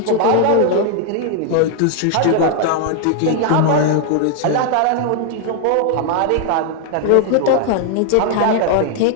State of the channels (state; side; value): different; both; correlation 0.00